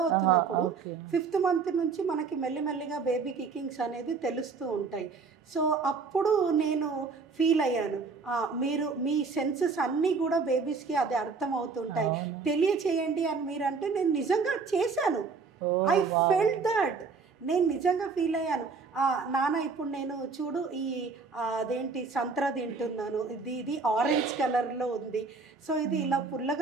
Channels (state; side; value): quieter; left; 4.8 dB